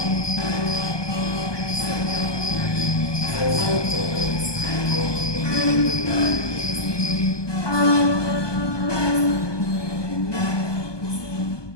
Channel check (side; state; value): right; late; 1.2 ms